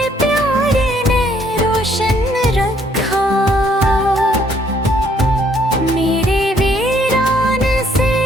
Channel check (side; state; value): both; normal; correlation 0.66